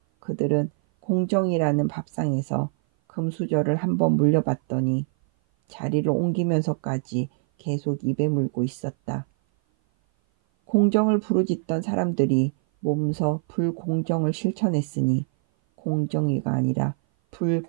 그들은 공정이라는 밥상에서 금수저를 한번 물려봤더니 자리를 옮기면서까지 계속 입에 물고 있었다. 공정을 부르짖던 사람들이 몸소 불공정을 실천했으니 공정위가 아니라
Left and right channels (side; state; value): left; silent; 57 dB below the other